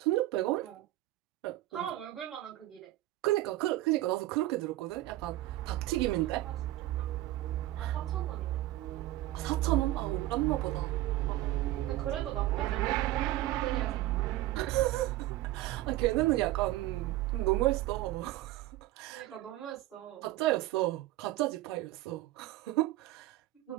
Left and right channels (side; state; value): left; quieter; 16.2 dB